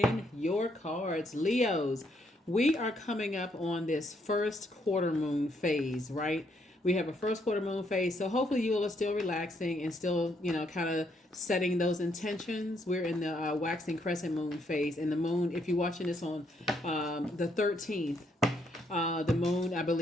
your cards, Leos. We are coming up on this first quarter moon phase, right? We have a first quarter moon phase, so hopefully you all are still relaxing and still, kind of setting those intentions. We're in the waxing crescent moon phase, and the moon, if you're watching this on the 13th, the moon, I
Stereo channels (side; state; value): both; normal; correlation 0.73